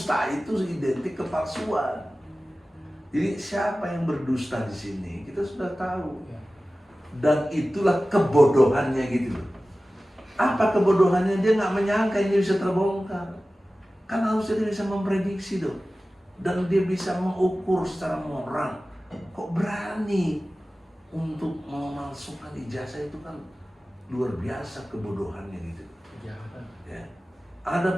itu identik kepalsuan. Jadi siapa yang berdusta di sini kita sudah tahu. Dan itulah kebodohannya gitu loh. Apa kebodohannya? Dia nggak menyangka ini bisa terbongkar. Kan harusnya dia bisa memprediksi dong. Dan dia bisa mengukur secara moral. Kok berani untuk memalsukan ijazah? Itu kan luar biasa kebodohannya gitu. Kejahatan. Ya.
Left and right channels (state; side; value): normal; both; correlation 0.96